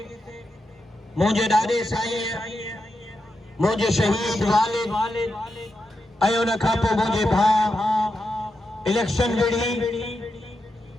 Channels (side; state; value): both; normal; correlation 0.87